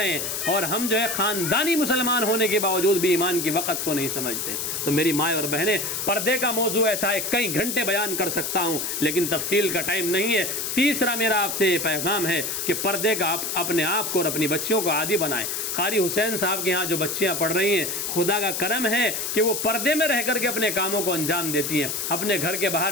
ہیں، اور ہم جو ہے خاندانی مسلمان ہونے کے باوجود بھی ایمان کی وقت کو نہیں سمجھتے. تو میری مائیں اور بہنیں، پردے کا موضوع ایسا ہے کئی گھنٹے بیان کر سکتا ہوں لیکن تفصیل کا ٹائم نہیں ہے. تیسرا میرا آپ سے یہ پیغام ہے کہ پردے کا اپنے آپ کو اور اپنی بچیوں کو عادی بنائیں. قاری حسین صاحب کے یہاں جو بچیاں پڑھ رہی ہیں، خدا کا کرم ہے کہ وہ پردے میں رہ کر کے اپنے کاموں کو انجام دیتی ہیں. اپنے گھر کے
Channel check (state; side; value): noise; left; hiss, 2 dB below the sound